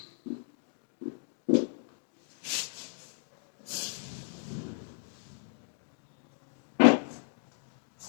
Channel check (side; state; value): right; silent; digital silence